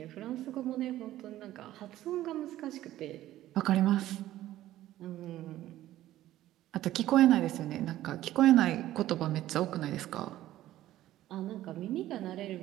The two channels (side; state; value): left; quieter; 14.2 dB